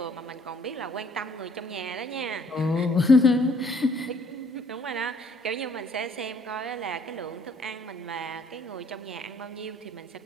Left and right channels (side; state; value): both; normal; correlation 0.62